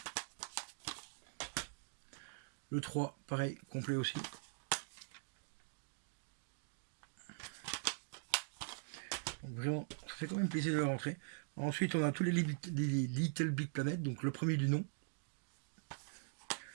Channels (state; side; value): silent; left; digital silence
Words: Le 3, pareil, complet aussi. Donc vraiment, ça fait quand même plaisir de le rentrer. Ensuite, on a tous les Little Big Planet, donc le premier du nom.